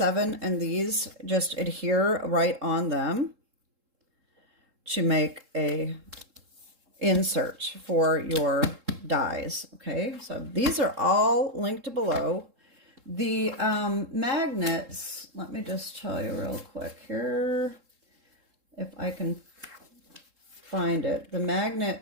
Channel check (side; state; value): left; late; 3.7 ms